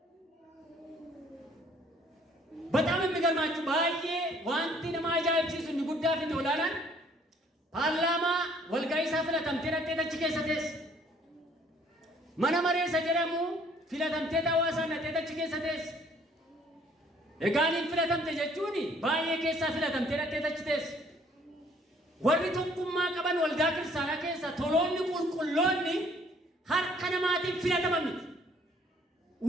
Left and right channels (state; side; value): normal; both; correlation 0.60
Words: በጣም የሚገርማችሁ ባዬ ዋንቲ ነማ አጃኢብሲሱ inni guddaa fi olaanaan paarlaamaa walga'iisaa filatamtee dhattee achi keessa teesse. Mana mareessa jedhamu filatamtee hawaasaa dhattee achi keessa teesse. Egaaniin filatamte jechuun baay'ee keessaa filatamtee dhattee achi teesse. Warri tokkummaa qaban waldaa kiristaanaa keessa toloonni qulqulloonni harka namaatiin filataman miti.